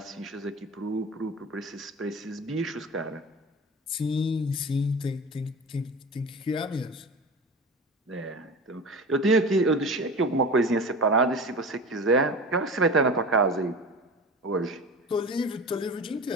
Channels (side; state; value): both; normal; correlation 0.32